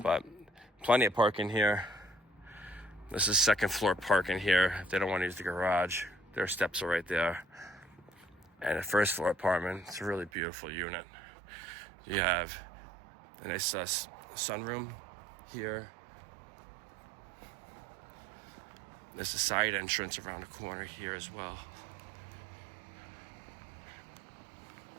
But plenty of parking here. This is 2nd floor parking here. If they don't want to use the garage, their steps are right there. And a 1st floor apartment. It's a really beautiful unit. You have a nice sunroom here. There's a side entrance around the corner here as well.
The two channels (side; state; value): left; drops out; at 10.3 s